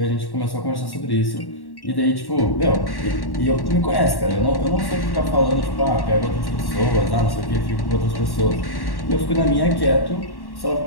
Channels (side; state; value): right; late; 1.1 ms